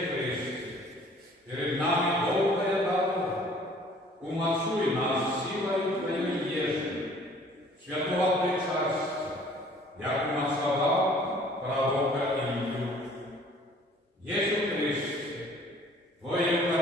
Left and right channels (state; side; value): normal; both; correlation 0.54